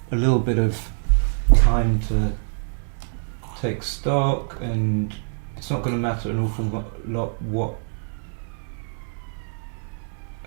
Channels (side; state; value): left; silent; 60 dB below the other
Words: little bit of time to take stock, and it's not going to matter an awful lot what